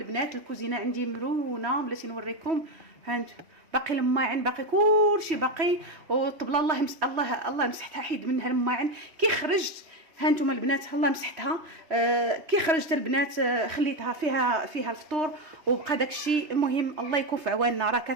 الكوزينه عندي مرونه بلاتي نوريكم. ها انتم باقي الماعن باقي كلشي باقي، والطبله الله مسحتها حيد منها الماعن كي خرجت. ها انتم البنات الله مسحتها كي خرجت البنات خليتها فيها الفطور وبقى داكشي. المهم الله يكون في عواننا. راه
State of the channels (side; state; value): left; late; 3.0 ms